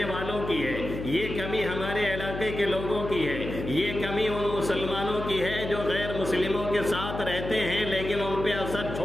والوں کی ہے، یہ کمی ہمارے علاقے کے لوگوں کی ہے، یہ کمی ان مسلمانوں کی ہے جو غیر مسلموں کے ساتھ رہتے ہیں لیکن ان پہ اثر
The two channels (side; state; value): left; noise; hum, 7 dB below the sound